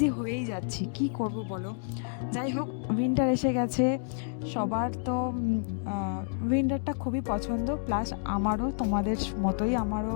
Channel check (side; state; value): right; silent; digital silence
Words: হয়েই যাচ্ছি, কি করব বলো। যাই হোক, উইন্টার এসে গেছে, সবার তো উইন্টারটা খুবই পছন্দ, প্লাস আমারও তোমাদের মতোই আমারও